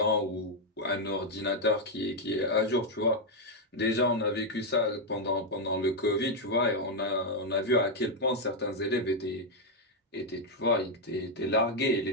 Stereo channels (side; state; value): both; normal; correlation 0.01